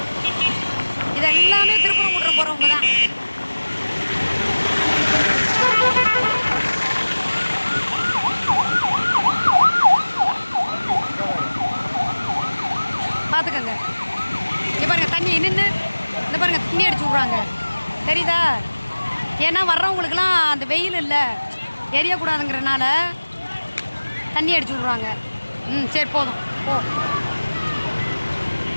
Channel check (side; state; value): both; inverted; correlation -1.00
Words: இது எல்லாமே திருப்பரங்குன்றம் போகிறவங்க தான். பார்த்துக்கங்க. இங்கே பாருங்க தண்ணி நின்று இந்த பாருங்க தண்ணி அடிச்சு விட்றாங்க தெரியுதா? ஏன்னா வர்றவங்களுக்குலாம் அந்த வெயில் இல்லை எரியக்கூடாதுங்கிறனால தண்ணி அடிச்சு விட்றாங்க. சரி போதும் போ.